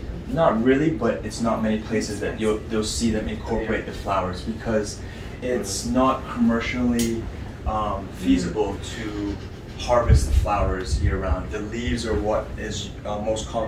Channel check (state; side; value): identical; both; correlation 1.00